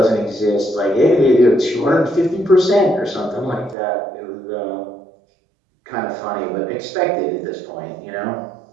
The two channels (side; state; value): left; drops out; at 3.8 s